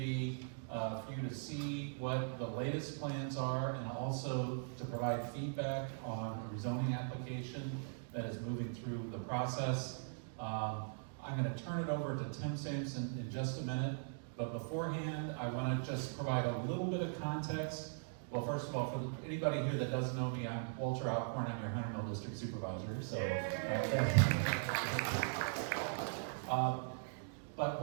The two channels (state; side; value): silent; left; digital silence